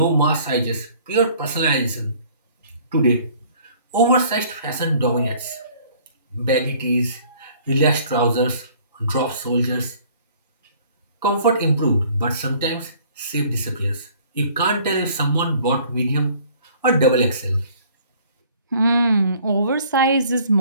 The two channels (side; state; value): both; inverted; correlation -0.55